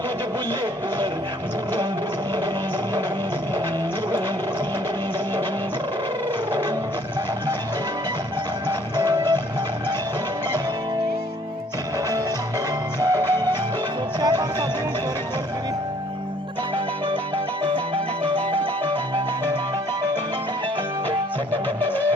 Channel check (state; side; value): normal; both; correlation 0.60